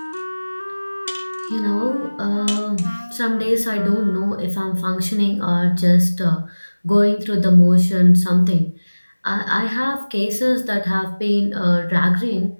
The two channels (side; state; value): both; inverted; correlation -1.00